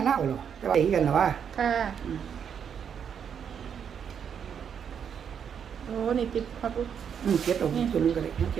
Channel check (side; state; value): left; quieter; 7.7 dB